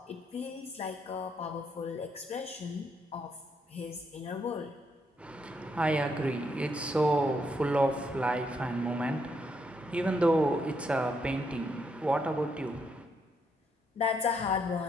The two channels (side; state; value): both; normal; correlation 0.76